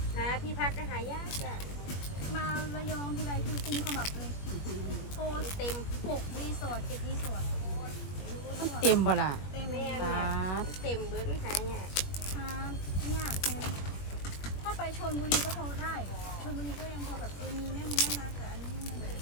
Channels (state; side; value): late; right; 21 ms